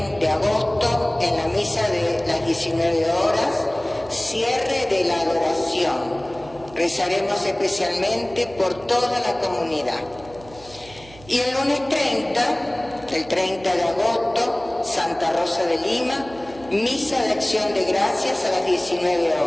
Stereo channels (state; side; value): noise; right; hum, 21 dB below the sound